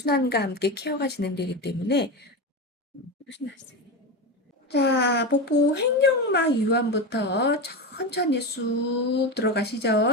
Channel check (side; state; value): both; normal; correlation 0.19